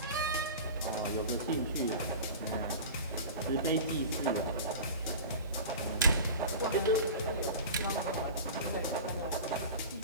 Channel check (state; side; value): inverted; both; correlation -0.33